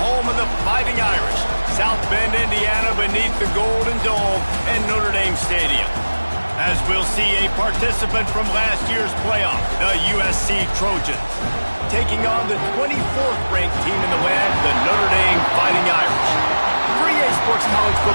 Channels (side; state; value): both; inverted; correlation -1.00